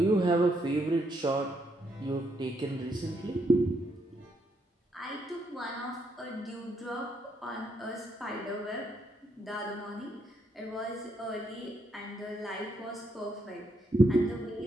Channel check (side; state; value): both; normal; correlation 0.76